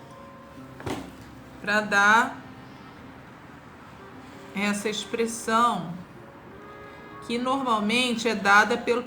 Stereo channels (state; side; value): identical; both; correlation 1.00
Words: para dar essa expressão que normalmente é dada pelo